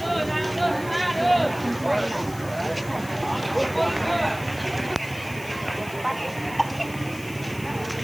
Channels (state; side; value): noise; left; hiss, 17 dB below the sound